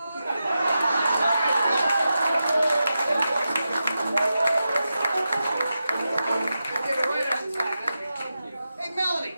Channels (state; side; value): inverted; both; correlation -0.90